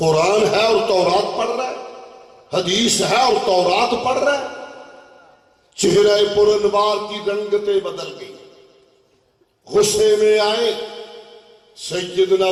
ہے اور تورات پڑھ رہا ہے، حدیث ہے اور تورات پڑھ رہا ہے۔ چہرہ پر انوار کی رنگتیں بدل گئی، غصے میں آئے۔ سیدنا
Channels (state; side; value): identical; both; correlation 1.00